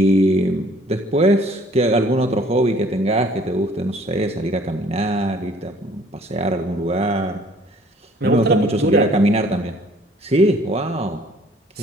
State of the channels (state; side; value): normal; both; correlation 0.57